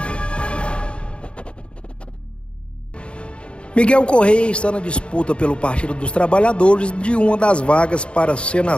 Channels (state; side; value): late; right; 0.057 ms